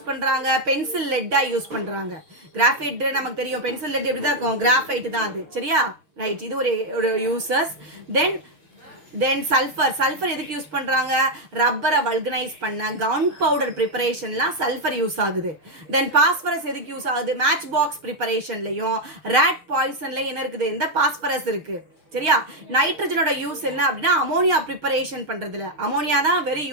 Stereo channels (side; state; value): left; late; 6.4 ms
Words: பண்றாங்க, பென்சில் லெட்டா யூஸ் பண்றாங்க. கிராஃபைட் நமக்கு தெரியும், பென்சில் லெட் எப்படி தான் இருக்கும், கிராஃபைட் தான் அது. சரியா, ரைட், இது ஒரு யூசஸ். தென் சல்ஃபர் எதுக்கு யூஸ் பண்றாங்க, ரப்பரை வல்கனைஸ் பண்ண, கன் பவுடர் ப்ரிப்பரேஷன்லாம் சல்ஃபர் யூஸ் ஆகுது. தென் பாஸ்பரஸ் எதுக்கு யூஸ் ஆகுது, மேட்ச் பாக்ஸ் ப்ரிப்பரேஷன்லயும் ரேட் பாய்சன்லயும் என்ன இருக்குது, இந்த பாஸ்பரஸ் இருக்கு. சரியா? நைட்ரஜனோட யூஸ் என்ன அப்படின்னா அமோனியா ப்ரிப்பரேஷன் பண்றதுல. அமோனியா தான் வெரி